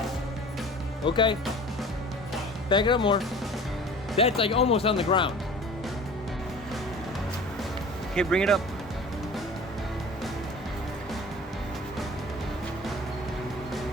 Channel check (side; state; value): both; normal; correlation 0.42